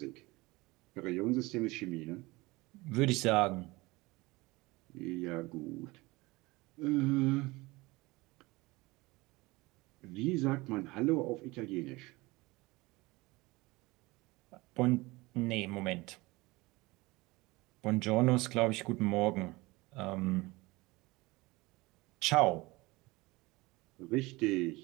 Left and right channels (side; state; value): left; quieter; 22.1 dB